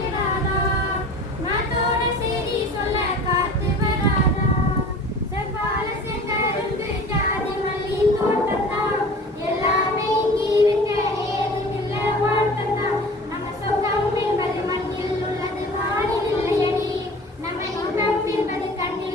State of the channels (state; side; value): normal; both; correlation 0.41